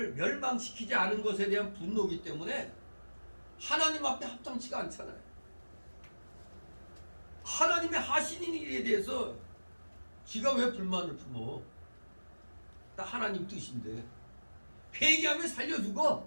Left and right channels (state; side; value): inverted; both; correlation -1.00